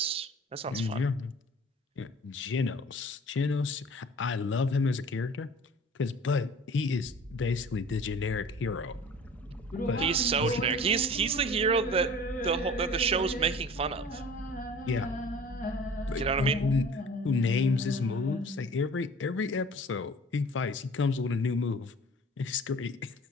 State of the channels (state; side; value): normal; both; correlation 0.45